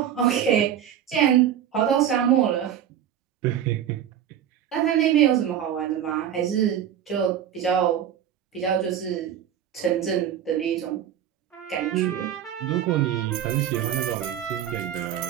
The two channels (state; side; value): quieter; left; 9.9 dB